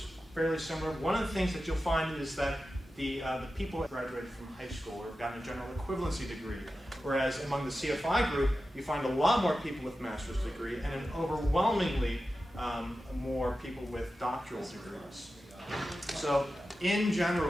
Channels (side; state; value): both; normal; correlation 0.93